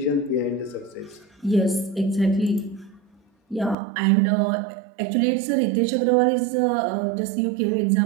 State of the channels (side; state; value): left; drops out; at 3.8 s